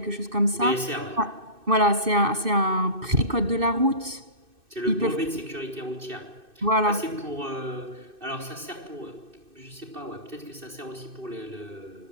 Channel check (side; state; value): left; late; 2.6 ms